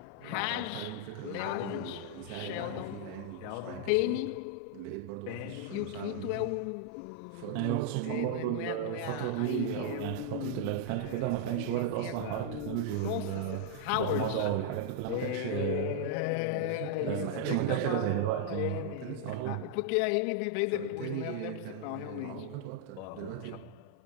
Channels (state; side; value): different; both; correlation -0.01